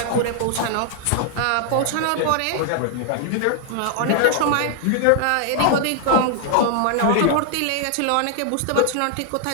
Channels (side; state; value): both; different; correlation 0.00